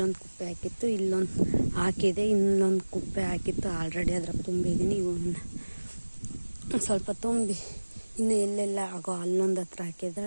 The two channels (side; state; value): both; inverted; correlation -1.00